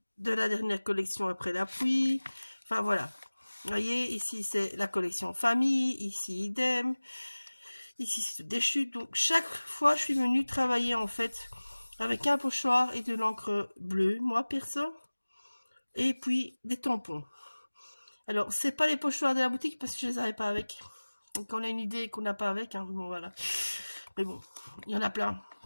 de la dernière collection après la pluie, enfin voilà. Vous voyez, ici c'est la collection famille, ici idem, ici c'est des chutes. Donc chaque fois je suis venue travailler en fait avec un pochoir et de l'encre bleue, moi perso, et puis des tampons. Alors c'est pas les pochoirs de la boutique parce que je les avais pas avec. Donc on a une idée qu'on n'a pas avec, hein. Bon voilà. Mais bon, il y en a plein.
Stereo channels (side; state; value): both; inverted; correlation -1.00